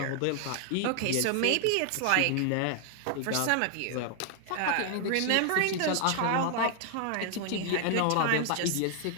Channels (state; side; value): different; both; correlation 0.00